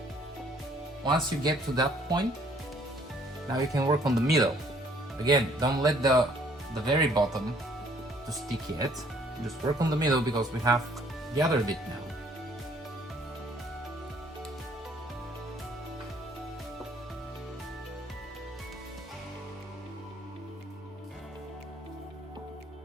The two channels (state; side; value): normal; both; correlation 0.61